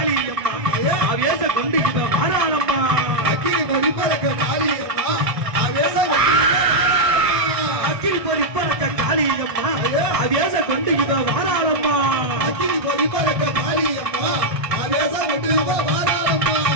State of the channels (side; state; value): left; late; 1.6 ms